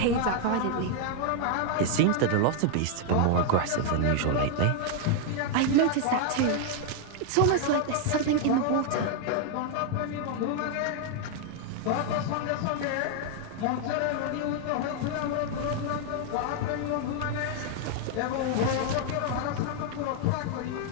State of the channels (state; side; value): different; both; correlation 0.00